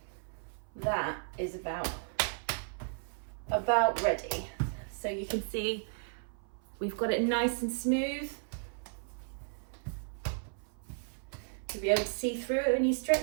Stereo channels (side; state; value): left; silent; 55 dB below the other